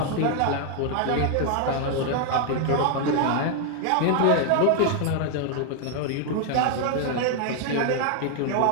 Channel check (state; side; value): different; both; correlation 0.00